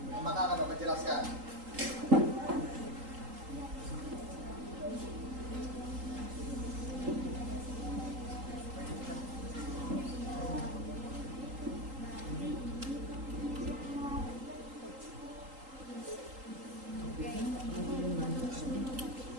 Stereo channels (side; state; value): left; late; 3.8 ms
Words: Maka akan Bapak jelaskan.